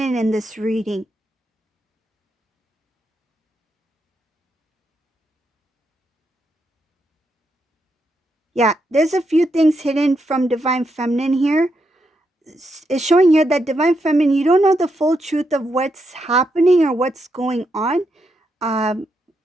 in this reading. Yeah, there's a few things hidden from Divine Feminine here. It's showing here that Divine Feminine, you don't know the full truth of what's happening or what's going on.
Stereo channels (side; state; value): both; normal; correlation 0.82